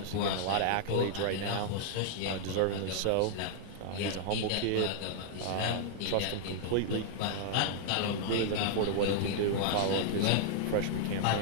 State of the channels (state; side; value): different; both; correlation -0.01